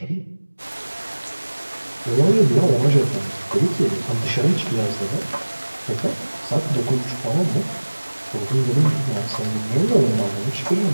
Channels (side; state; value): both; inverted; correlation -1.00